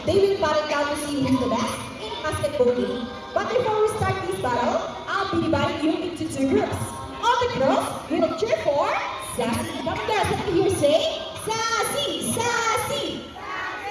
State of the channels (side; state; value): both; identical; correlation 1.00